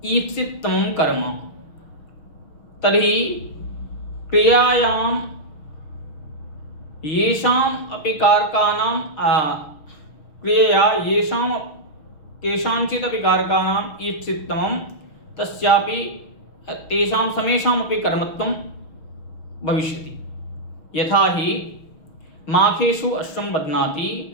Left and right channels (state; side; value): late; right; 6.3 ms